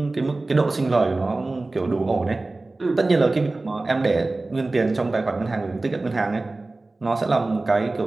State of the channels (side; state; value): left; quieter; 3.1 dB